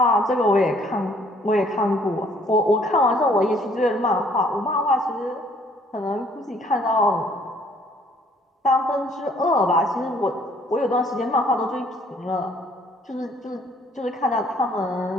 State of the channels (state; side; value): normal; both; correlation 0.61